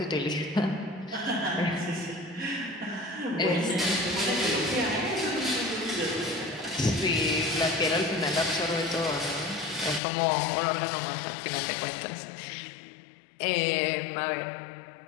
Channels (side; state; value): right; drops out; at 10.0 s